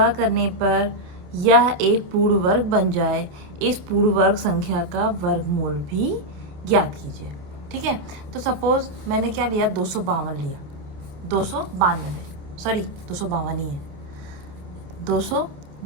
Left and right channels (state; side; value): late; left; 27 ms